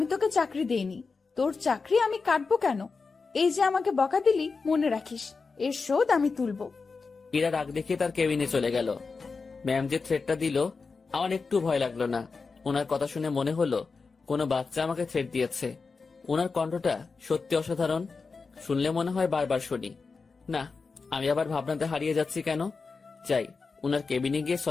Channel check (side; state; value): right; quieter; 4.6 dB